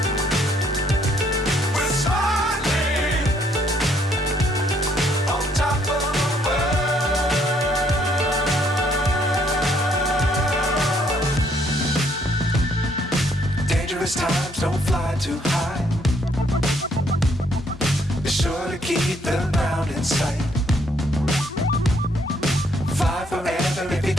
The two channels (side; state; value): both; normal; correlation 0.68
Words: Dangerous times, don't fly too high. Be sure to keep the ground in sight. Fly forever if you